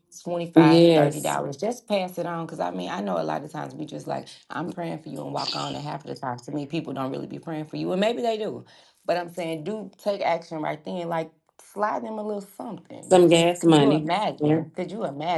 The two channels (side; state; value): both; identical; correlation 1.00